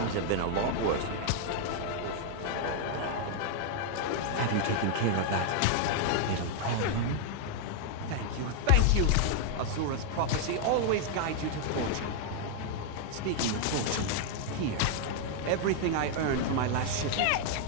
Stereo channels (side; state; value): both; different; correlation 0.00